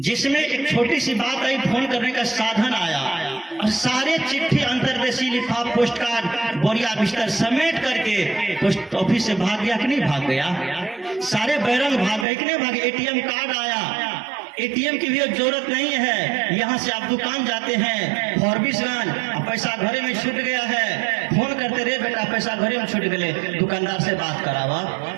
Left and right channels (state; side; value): drops out; left; at 12.2 s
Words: एक छोटी सी बात आई, फोन करने का साधन आया, और सारे चिट्ठी अंतरदेशी लिफाफ पोस्ट कार्ड बोरिया बिस्तर समेट करके पोस्ट ऑफिस से भाग गया कि नहीं भाग गया? सारे बैरंग भाग गए कि नहीं भागे? एटीएम कार्ड आया, एटीएम की भी जरूरत नहीं है। यहाँ से आप दुकान जाते हैं फॉरबिसगंज, पैसा घरे में छूट गया है, फोन करते रहे बेटा पैसा घरे में छूट गए, दुकानदार से बात करावा,